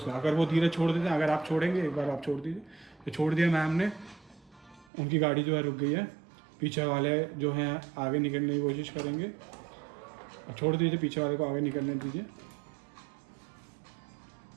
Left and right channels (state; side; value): drops out; left; at 4.9 s